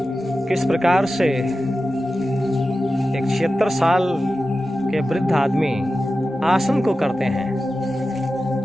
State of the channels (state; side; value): normal; both; correlation 0.93